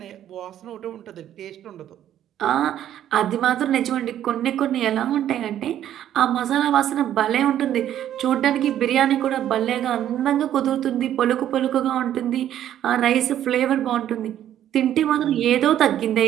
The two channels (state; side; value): quieter; left; 11.2 dB